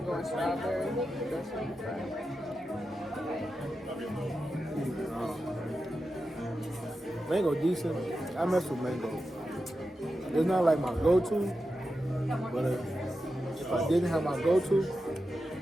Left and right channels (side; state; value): both; normal; correlation 0.90